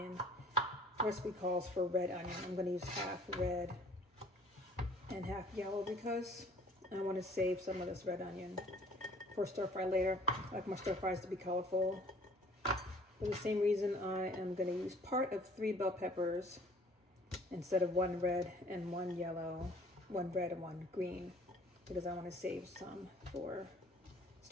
The recipe calls for red onion. I'm going to use half red and half yellow because I want to save some of this red onion for stir fry later. I like my stir fries to be colorful. For the same reason, I am going to use part of 3 bell peppers instead of 1 red and 1 yellow, 1 red and 1 green, because I want to save some for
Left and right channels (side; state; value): both; normal; correlation 0.54